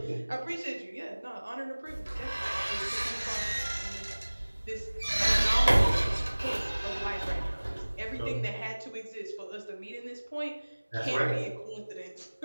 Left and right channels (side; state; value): both; inverted; correlation -1.00